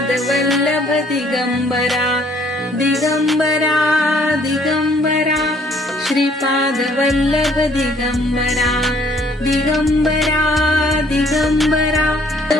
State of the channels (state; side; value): normal; both; correlation 0.62